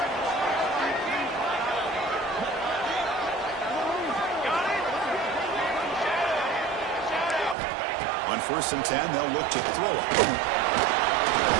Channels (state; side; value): drops out; left; at 7.6 s